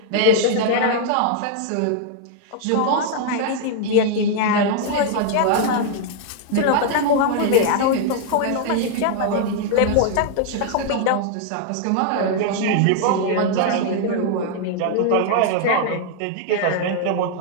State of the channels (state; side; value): different; both; correlation 0.00